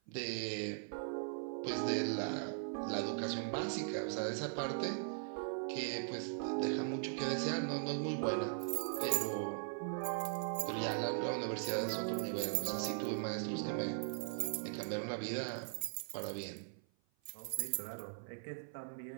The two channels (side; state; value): left; silent; 51 dB below the other